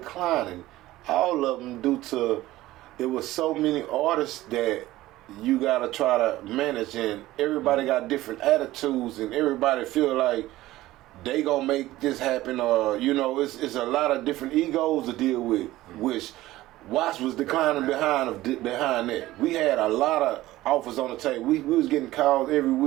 All of them due to it was so many artists that you gotta try to manage, and everybody got different attitudes, and everybody feel like they gonna make this happen, or it's a lot of different egos to deal with, which Watts was declining behind that. We had a lot of offers on the table. We was getting calls every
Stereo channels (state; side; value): quieter; left; 16.5 dB